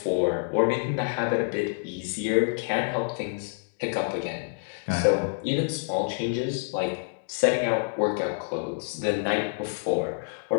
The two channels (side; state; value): right; silent; digital silence